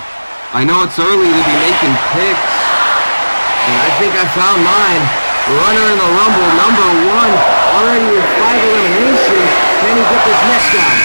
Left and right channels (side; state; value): both; inverted; correlation -1.00